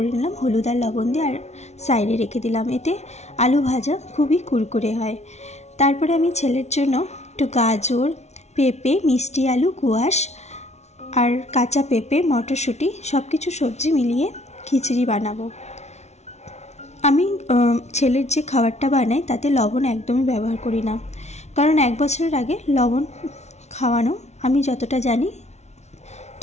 নিলাম হলুদ আর লবণ দিয়ে, আর সাইডে রেখে দিলাম। এতে আলু ভাজা খুবই কুরকুরে হয়। তারপরে আমি ছেলের জন্য একটু গাজর, পেঁপে, মিষ্টি আলু, কোয়াশ আর কাঁচা পেঁপে, মটরশুঁটি সব কিছু সবজি মিলিয়ে খিচুড়ি বানাবো। আমি ছেলের যে খাবারটা বানাই তাতে লবণ একদমই ব্যবহার করি না, কারণ 1 বছরের আগে লবণ খাওয়ানো আমি যতটা জানি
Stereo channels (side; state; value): right; late; 0.32 ms